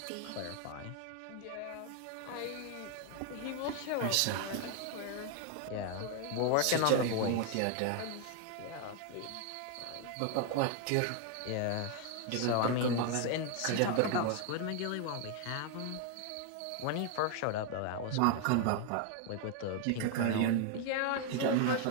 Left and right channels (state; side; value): different; both; correlation 0.01